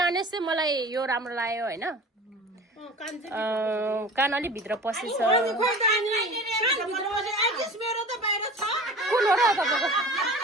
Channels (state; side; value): normal; both; correlation 0.39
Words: चाहिँ मलाई यो राम्रो लाग्यो होइन कान अलिक भित्र पसेछ कुन हो र तपाईँको